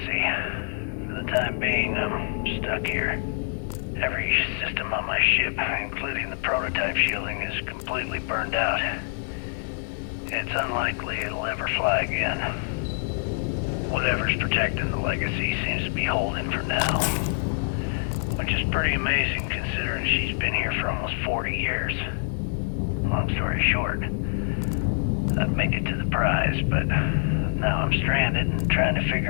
For the time being, I'm stuck here. Every system on my ship, including the prototype shielding, is completely burned out. It's unlikely it'll ever fly again. Whatever's protecting the Legacy seems to be holding for now. Which is pretty amazing considering she's been here for almost 40 years. Long story short, I've made it to the prize, but now I'm stranded and trying to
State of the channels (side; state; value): right; silent; digital silence